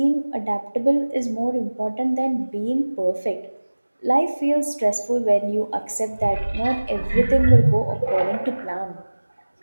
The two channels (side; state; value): both; inverted; correlation -1.00